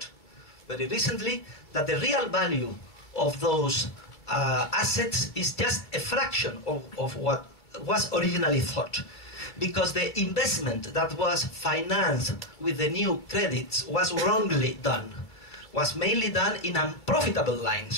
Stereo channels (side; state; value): right; late; 2.3 ms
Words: very recently that the real value of those assets is just a fraction of what was originally thought, because the investment that was financed with the new credits was wrongly done, was mainly done in unprofitable